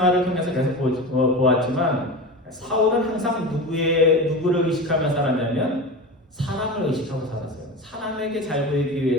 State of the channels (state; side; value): normal; both; correlation 0.27